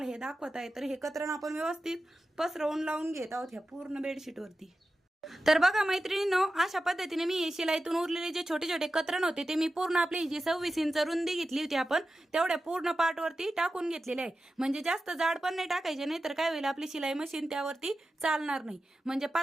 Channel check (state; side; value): normal; both; correlation 0.93